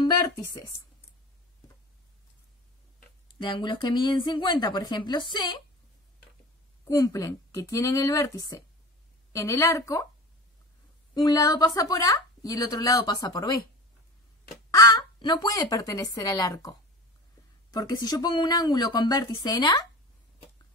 vértices de ángulos que miden 50, por ejemplo C, cumplen que tienen el vértice en el arco, un lado pasa por A y el otro lado pasa por B. A no puede pertenecer al arco. Porque si yo pongo un ángulo con vértice en A,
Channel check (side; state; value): both; normal; correlation 0.33